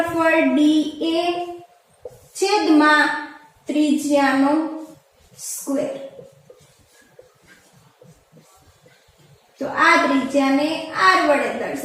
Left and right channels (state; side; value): identical; both; correlation 1.00